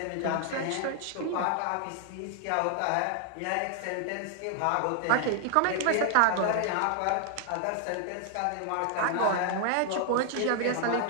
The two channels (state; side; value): different; both; correlation 0.00